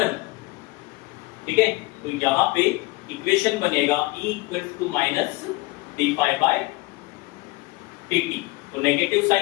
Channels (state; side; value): quieter; right; 22.2 dB